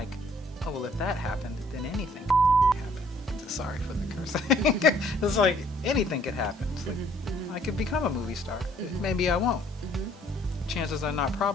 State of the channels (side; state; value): both; normal; correlation 0.61